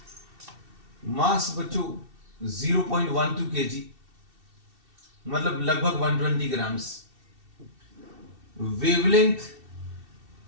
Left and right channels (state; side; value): late; left; 2.7 ms